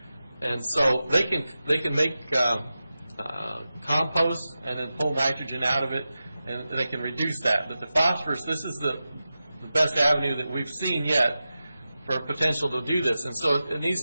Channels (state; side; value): inverted; both; correlation -0.93